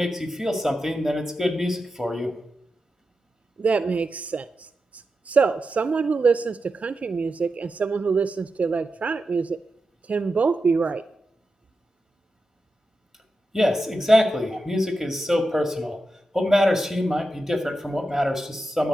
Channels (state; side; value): normal; both; correlation 0.90